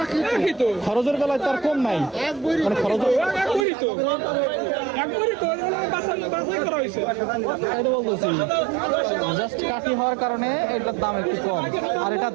খরচের বেলায় তার কম নাই। মানে খরচ বলতেছি, জাস্ট কাঠি হওয়ার কারণে এটার দাম একটু কম, আর এটা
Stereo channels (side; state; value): left; drops out; at 3.7 s